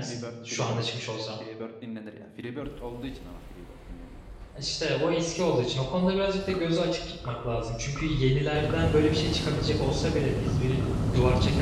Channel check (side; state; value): both; identical; correlation 1.00